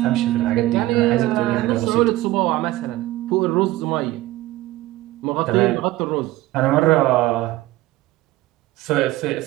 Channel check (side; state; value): left; quieter; 17.1 dB